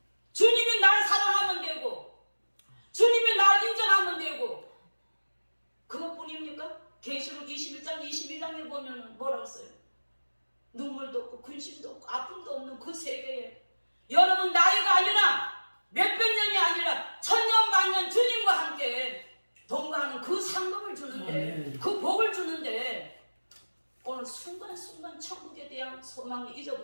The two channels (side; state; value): both; inverted; correlation -1.00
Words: 주님이 날 사랑하면 되고 주님이 날 인정하면 되고 그것뿐입니까? 계시록 21장 22장에 보면 뭐라고 써요? 눈물도 없고 근심도 없고 아픔도 없는 그 세계에 여러분 나이가 아니라 몇백 년이 아니라 천년 만년 주님과 함께 동거하는 그 상급을 주는데 그 복을 주는데 오늘 순간순간 천국에 대한 소망을